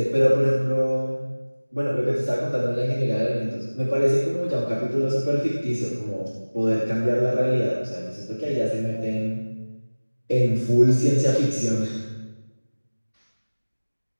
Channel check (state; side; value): inverted; both; correlation -1.00